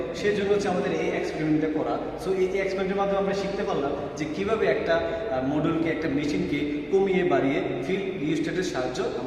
সেই জন্য হচ্ছে আমাদের এই এক্সপেরিমেন্টটা করা। সো এই এক্সপেরিমেন্টের মাধ্যমে আমরা শিখতে পারলাম যে কীভাবে একটা মডিউলকে, একটা মেশিনকে কমিয়ে বাড়িয়ে ফিল্ড রিস্টারের সাহায্য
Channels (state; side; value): identical; both; correlation 1.00